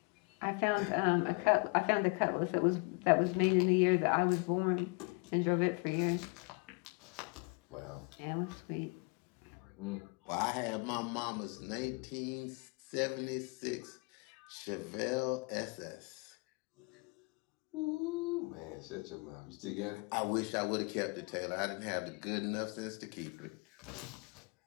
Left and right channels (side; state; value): right; quieter; 31.5 dB